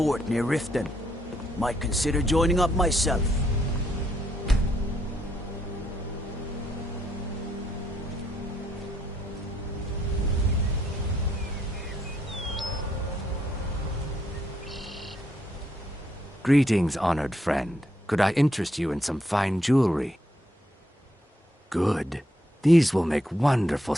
near Riften. Might consider joining up myself. Greetings, honored friend. Could I interest you in some fine jewelry? Good. These will make wonderful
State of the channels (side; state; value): both; normal; correlation 0.74